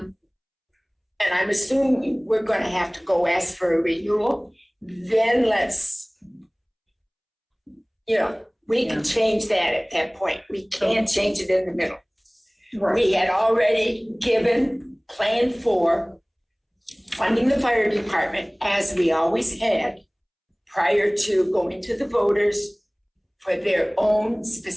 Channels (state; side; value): identical; both; correlation 1.00